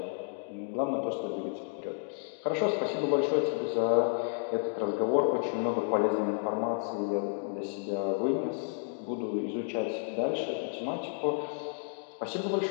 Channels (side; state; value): right; silent; 57 dB below the other